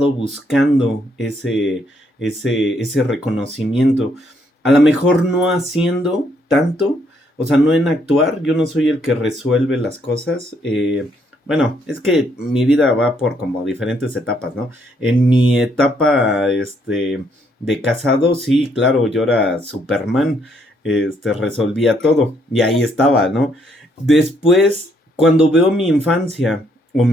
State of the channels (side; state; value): both; normal; correlation 0.71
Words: buscando ese reconocimiento. A lo mejor no haciendo tanto, o sea, no en actuar, yo no soy el que resuelve las cosas. Bueno, es que mi vida va por como diferentes etapas, ¿no? En mi etapa, de casado, sí, claro, yo era Superman, resolvía todo, y ahí estaba, ¿no? Después, cuando veo mi infancia, o